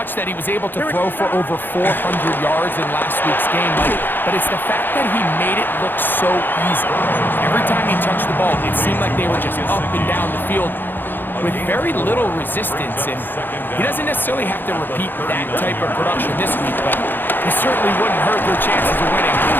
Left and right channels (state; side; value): late; right; 0.094 ms